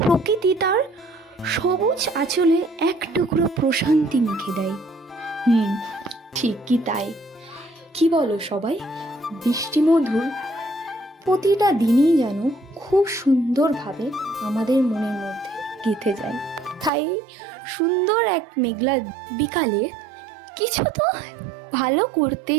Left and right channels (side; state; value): left; drops out; at 16.9 s